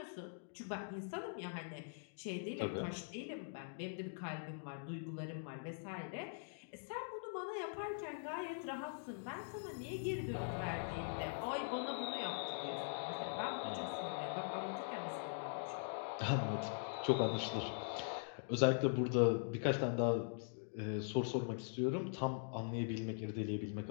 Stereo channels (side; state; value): right; silent; digital silence